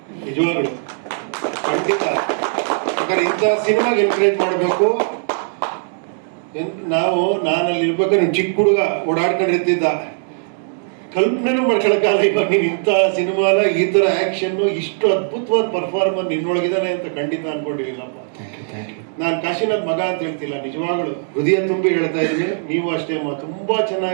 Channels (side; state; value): left; silent; digital silence